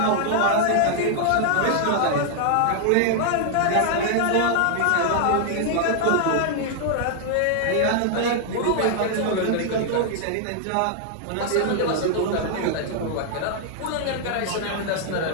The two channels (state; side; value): different; both; correlation -0.01